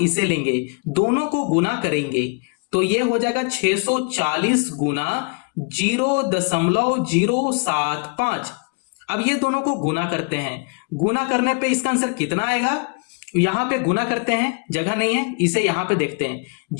इसे लेंगे, दोनों को गुना करेंगे। तो ये हो जाएगा 640 गुना 0.075। अब ये दोनों को गुना करते हैं, गुना करने पे इसका आंसर कितना आएगा, यहां पे गुना करते हैं, जगह नहीं है, इसे यहां पे देखते हैं।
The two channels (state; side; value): quieter; right; 34.7 dB